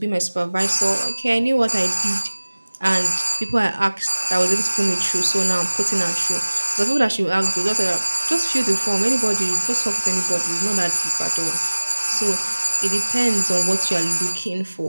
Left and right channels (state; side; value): inverted; both; correlation -1.00